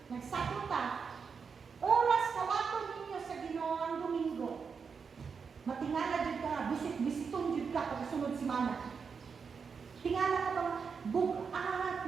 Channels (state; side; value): quieter; left; 5.8 dB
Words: Nagsakot ta. Oras kawaton ninyo sa Ginoo ang Domingo. Matingala jud ka, bisitong jud ka pagsunod semana. Tingala ka bang bugat